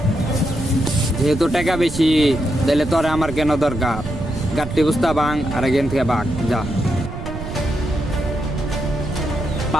যেহেতু টাকা বেশি, তাহলে তোরে আমার কেন দরকার? গাড়ি বুঝতা বাং আর এখান থেকে বাঘ যা।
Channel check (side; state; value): right; noise; rumble, 8 dB below the sound